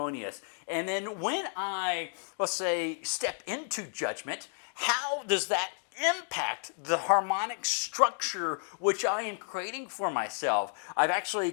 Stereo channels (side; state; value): right; silent; 57 dB below the other